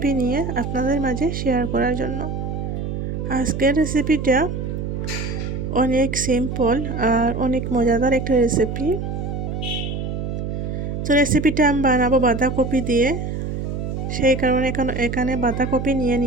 নিয়ে আপনাদের মাঝে শেয়ার করার জন্য। আজকের রেসিপিটা অনেক সিম্পল আর অনেক মজাদার একটা রেসিপি। তো রেসিপিটা আমি বানাবো বাঁধাকপি দিয়ে, সেই কারণে এখানে বাঁধাকপি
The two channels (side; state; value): right; noise; hum, 4 dB below the sound